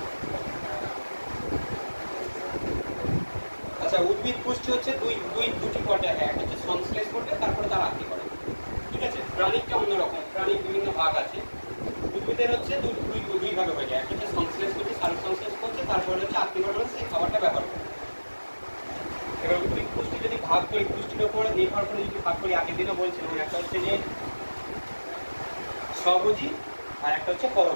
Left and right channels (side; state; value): both; inverted; correlation -1.00